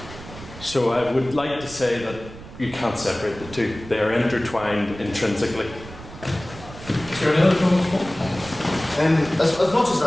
So I would like to say that you can't separate the two. They are intertwined intrinsically. Is there any other comments? As much as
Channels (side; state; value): right; noise; rumble, 15 dB below the sound